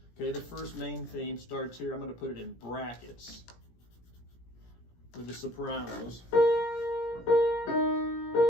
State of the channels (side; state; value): right; late; 17 ms